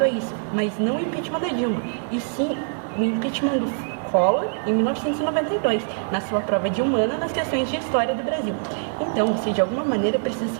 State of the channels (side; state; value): left; silent; 63 dB below the other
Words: a isso, mas não o impeachment da Dilma, e sim o impeachment do Collor em 1992, na sua prova de humana nas questões de história do Brasil. Então, você de alguma maneira precisa